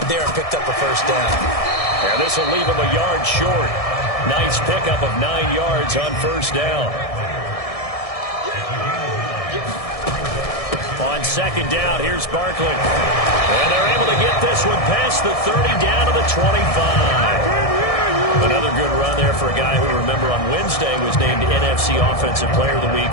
there and picked up a first down. And this will leave him a yard short. Nice pickup of 9 yards on 1st down. On 2nd down, here's Barkley. And they're able to get this one past the 30 down to the 25. Another good run there for a guy who, remember, on Wednesday was named NFC Offensive Player of the Week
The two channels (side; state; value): right; late; 1.6 ms